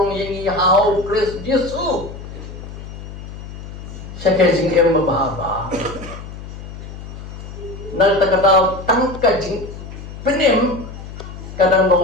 yang hau Kris Yesu syaka jing em babha na ta ka tang ka jing penem kadang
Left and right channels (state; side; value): noise; left; hum, 12 dB below the sound